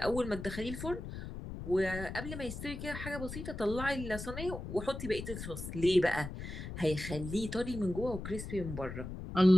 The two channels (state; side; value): noise; left; rumble, 8 dB below the sound